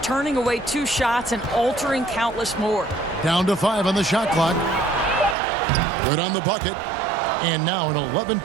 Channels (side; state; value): left; drops out; at 5.4 s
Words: away 2 shots and altering countless more. Down to 5 on the shot clock. Good on the bucket. And now an